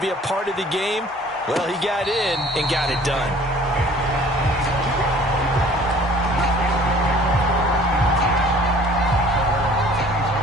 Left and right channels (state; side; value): normal; both; correlation 0.51